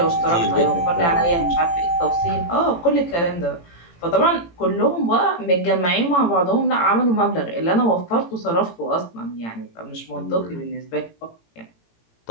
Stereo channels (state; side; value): late; right; 18 ms